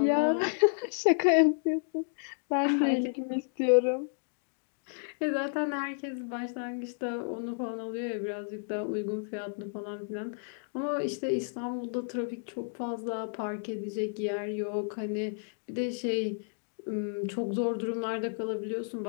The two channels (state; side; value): silent; right; digital silence